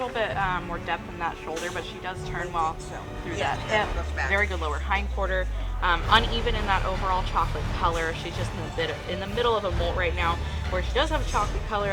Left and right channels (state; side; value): identical; both; correlation 1.00